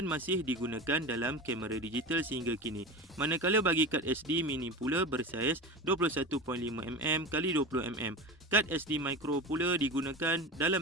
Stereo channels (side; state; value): both; normal; correlation 0.27